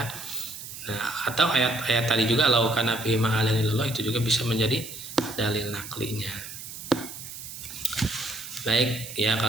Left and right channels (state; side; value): noise; right; hiss, 11 dB below the sound